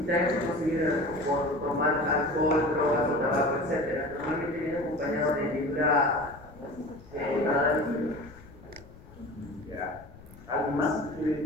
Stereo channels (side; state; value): left; noise; rumble, 20 dB below the sound